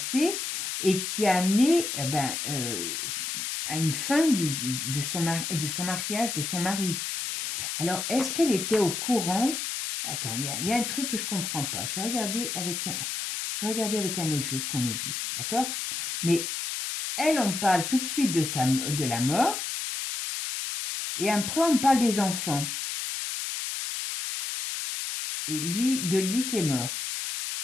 et qui a amené à une fin de son mariage, de son mari. Alors, est-ce qu'elle était au courant? Attends, il y a un truc que je ne comprends pas. Je vais regarder avec un autre jeu ce qu'on nous dit, d'accord? Mais elle, on parle tout de suite de la mort, et après, on parle des enfants. Et de lui qui est mort.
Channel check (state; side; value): noise; left; hiss, 3 dB below the sound